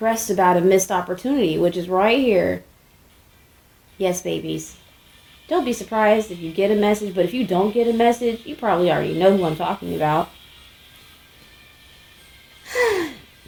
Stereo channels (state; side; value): identical; both; correlation 1.00